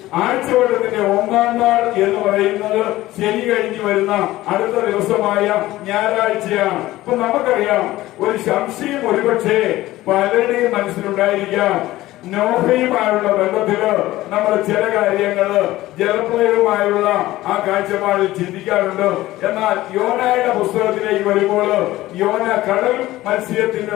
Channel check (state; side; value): quieter; right; 16.6 dB